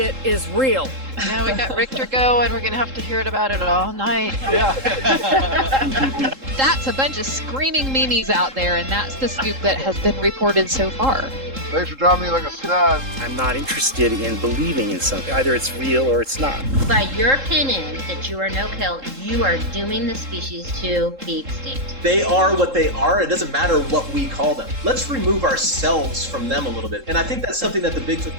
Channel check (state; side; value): late; left; 3.7 ms